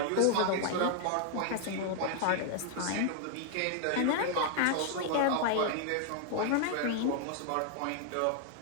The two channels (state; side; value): different; both; correlation 0.00